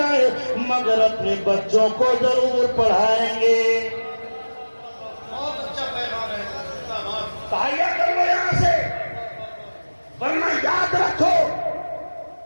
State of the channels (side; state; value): both; inverted; correlation -1.00